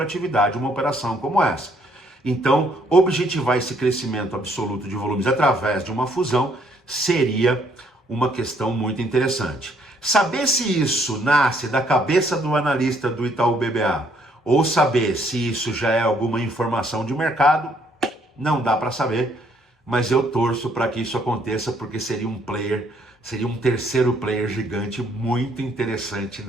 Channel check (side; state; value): both; normal; correlation 0.67